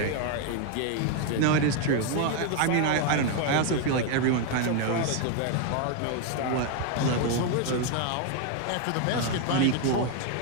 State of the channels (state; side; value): different; both; correlation 0.00